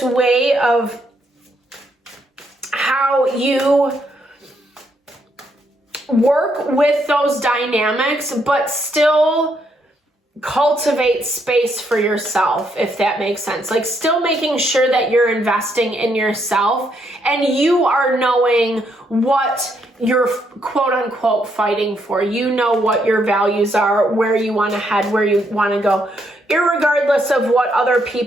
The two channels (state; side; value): normal; both; correlation 0.75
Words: way of how you work with those dynamics, but still cultivate space for yourself, if that makes sense. Like still making sure that you're investing in yourself and you are knowing what you're quote unquote fighting for. You know what your values are, where you want to head, where you want to go, irregardless of what other